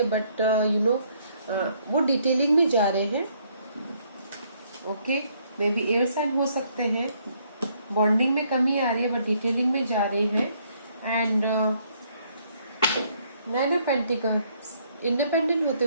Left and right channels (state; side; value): inverted; both; correlation -0.68